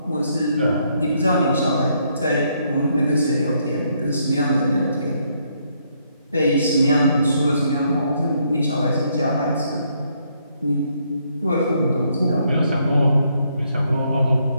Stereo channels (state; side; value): inverted; both; correlation -0.73